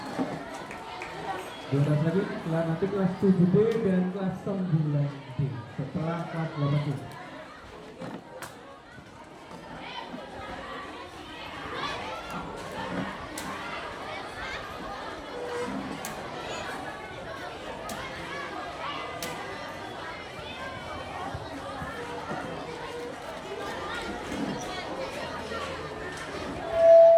Dua lagi, nanti kelas 7D dan kelas 9D setelah kelas 8D.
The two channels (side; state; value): both; identical; correlation 1.00